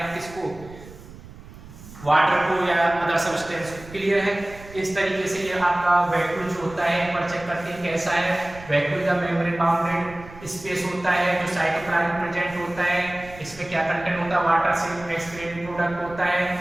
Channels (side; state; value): right; noise; rumble, 18 dB below the sound